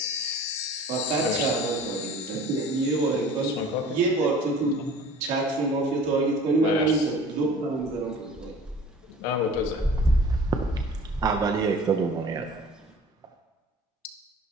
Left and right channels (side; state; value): both; normal; correlation 0.45